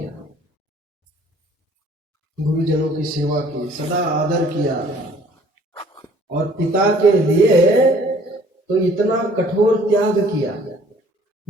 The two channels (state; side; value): normal; both; correlation 0.56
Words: गुरुजनों की सेवा की, सदा आदर किया, और पिता के लिए तो इतना कठोर त्याग किया,